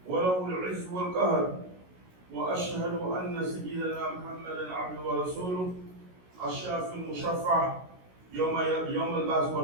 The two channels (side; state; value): left; late; 16 ms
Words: وله العز والقهر. وأشهد أن سيدنا محمدا عبده ورسوله الشافي المشفع يوم البعث